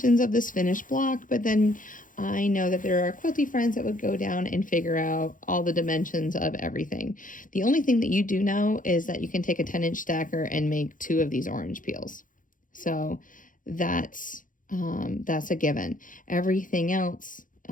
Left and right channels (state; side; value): late; right; 0.39 ms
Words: of this finished block, but then I know that there are quilty friends that would go down and figure out all the dimensions of everything. The only thing that you do know is that you can take a 10-inch stacker and make 2 of these orange peels. So that's a given. Everything else,